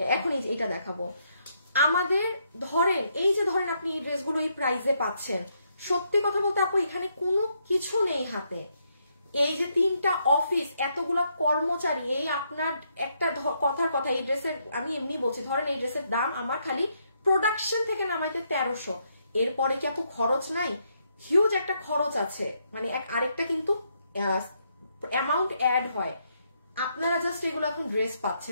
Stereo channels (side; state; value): both; inverted; correlation -0.76